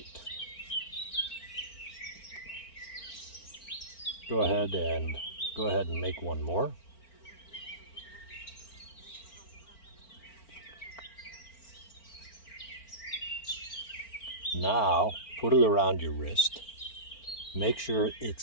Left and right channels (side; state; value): right; late; 4.4 ms